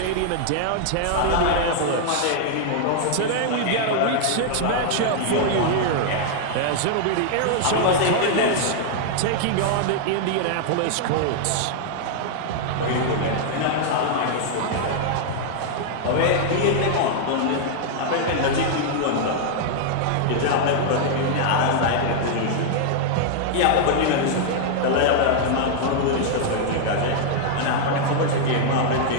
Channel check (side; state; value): both; different; correlation -0.01